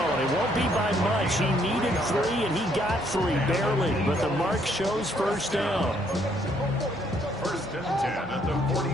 It won't be by much. He needed 3, and he got 3, barely. But the mark shows first down. 1st and 10 at the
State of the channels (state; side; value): noise; right; hum, 18 dB below the sound